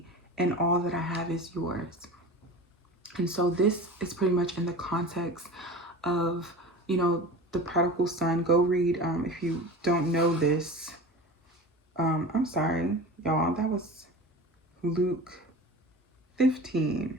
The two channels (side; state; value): both; normal; correlation 0.34